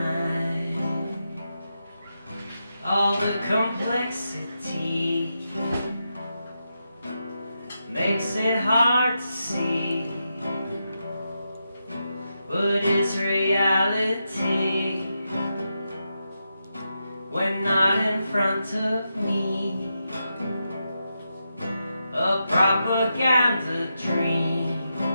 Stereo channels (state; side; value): inverted; both; correlation -0.86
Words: All the complexity makes it hard to see what is reality when not in front of me. A propaganda dream